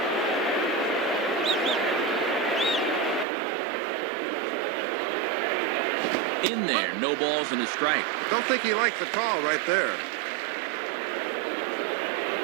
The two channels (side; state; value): left; drops out; at 3.2 s